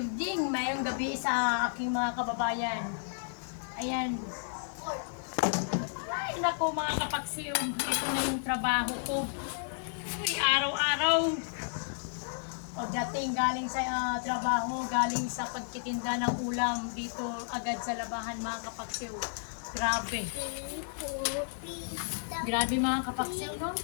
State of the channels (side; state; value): right; silent; 56 dB below the other